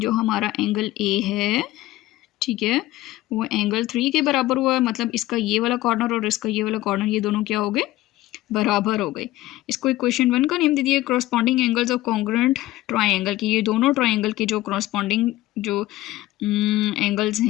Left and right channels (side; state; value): right; quieter; 16.6 dB